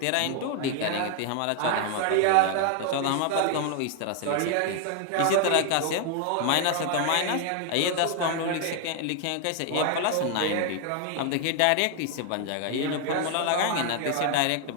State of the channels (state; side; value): different; both; correlation 0.00